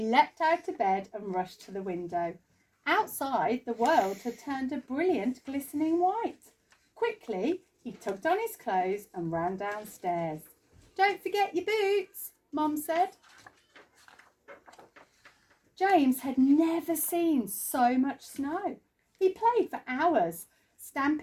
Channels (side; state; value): both; identical; correlation 1.00